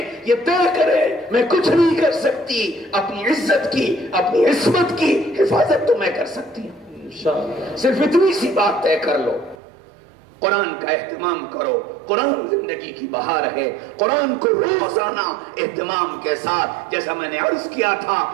یہ طے کرے میں کچھ نہیں کر سکتی، اپنی عزت کی، اپنی عصمت کی حفاظت تو میں کر سکتی ہوں۔ صرف اتنی سی بات طے کر لو، قرآن کا اہتمام کرو، قرآن زندگی کی بہار ہے، قرآن کو روزانہ اہتمام کے ساتھ، جیسا میں نے عرض کیا تھا،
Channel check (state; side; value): drops out; left; at 9.6 s